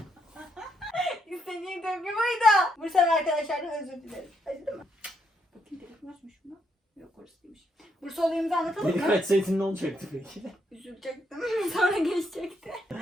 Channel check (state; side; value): normal; both; correlation 0.76